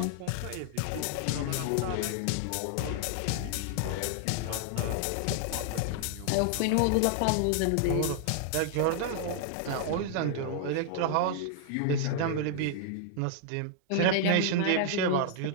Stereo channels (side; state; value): both; different; correlation 0.00